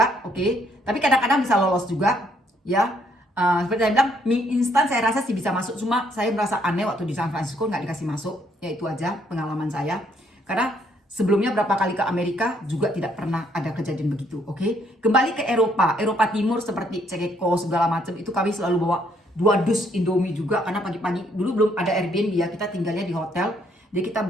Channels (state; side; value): normal; both; correlation 0.69